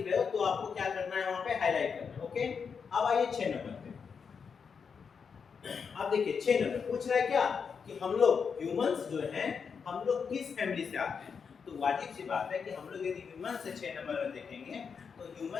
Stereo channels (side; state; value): right; quieter; 6.1 dB